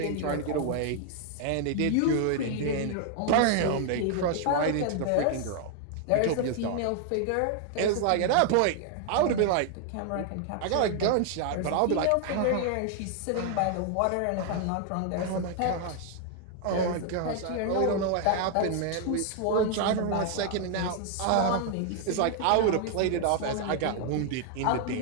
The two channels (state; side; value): different; both; correlation 0.00